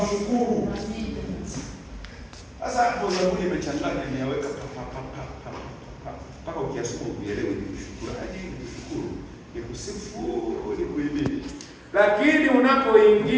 Sasa hapo Zaburi imechanganya, nimeweka mpaka ukiasoma uelewe ni kushukuraji, ni kushukuru, ni kusifu, ni kuhimidi. Lakini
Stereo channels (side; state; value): both; identical; correlation 1.00